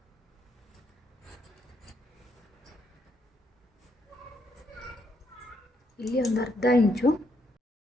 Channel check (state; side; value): normal; both; correlation 0.75